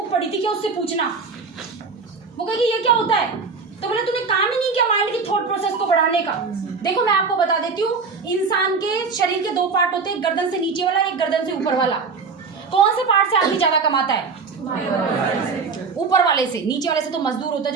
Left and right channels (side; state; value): left; quieter; 4.8 dB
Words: पढ़ी थी क्या, उससे पूछना। वो कहेगी ये क्या होता है, तो बोले तूने काम ही नहीं किया माइंड की थॉट प्रोसेस को बढ़ाने का। देखो मैं आपको बता देती हूँ, इंसान के शरीर के 2 पार्ट होते हैं, गर्दन से नीचे वाला, एक गर्दन से ऊपर वाला। कौन से पार्ट से आदमी ज्यादा कमाता है? ऊपर वाले वाले से तो मजदूर होता है